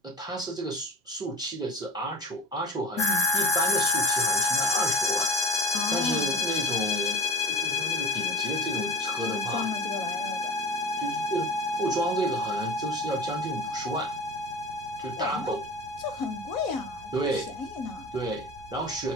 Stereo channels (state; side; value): normal; both; correlation 0.33